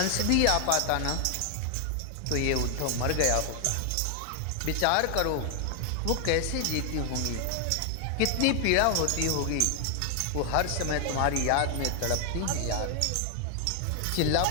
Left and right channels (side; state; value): both; different; correlation 0.00